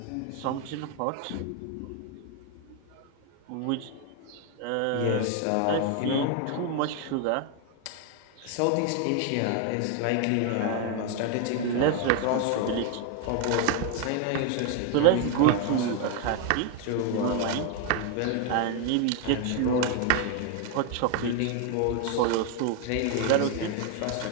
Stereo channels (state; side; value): different; both; correlation 0.01